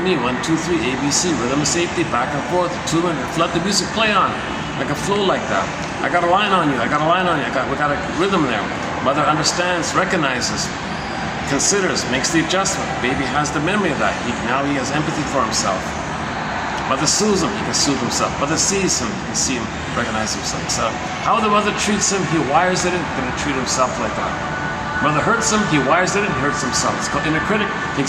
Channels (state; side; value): identical; both; correlation 1.00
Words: 1, 2, 3, A, B, C, rhythm of safety, back and forth, attunement, let the music play on, like a flow like that. I got a line on you, I got a line on you, we got a rhythm there. Mother understands, recognizes, considers, makes the adjustment. Baby has the memory of that. Now he has empathy for himself. Mother soothes him, he can soothe himself. Mother sees him, he can see him, recognize himself. So how the mother treats him, he wires it in, going to treat himself like that. Mother hurts him, he wires it in, he hurts himself. It's called inner critic,